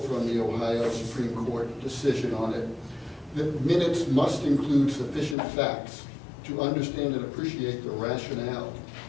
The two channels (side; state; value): right; drops out; at 5.4 s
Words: from the Ohio Supreme Court decision on it. The minutes must include sufficient facts to understand and appreciate the rationale